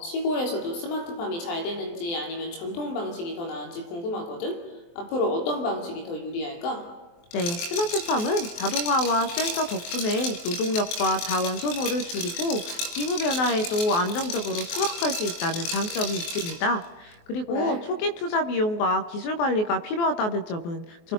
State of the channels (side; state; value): right; late; 23 ms